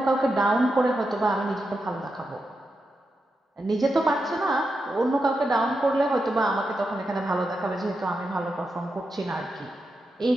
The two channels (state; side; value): normal; both; correlation 0.87